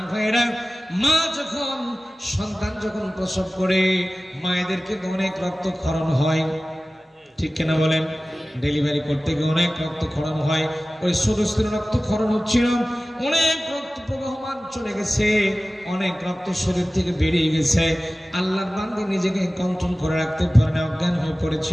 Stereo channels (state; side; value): normal; both; correlation 0.97